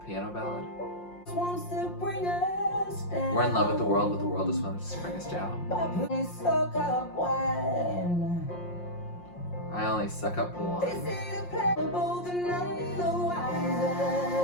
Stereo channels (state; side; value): late; right; 5.6 ms